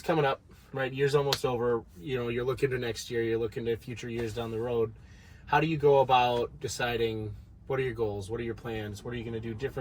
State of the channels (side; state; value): both; identical; correlation 1.00